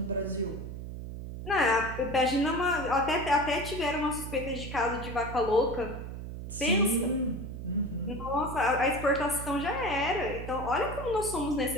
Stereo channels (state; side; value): noise; right; hum, 8 dB below the sound